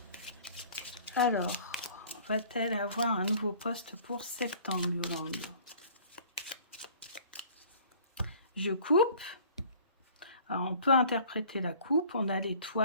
Alors, va-t-elle avoir un nouveau poste pour septembre, Yolande? Je coupe. Alors, on peut interpréter la coupe. On a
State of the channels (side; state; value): both; inverted; correlation -0.51